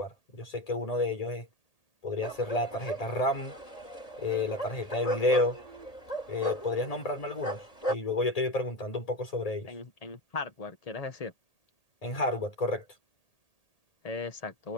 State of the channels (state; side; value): late; right; 1.8 ms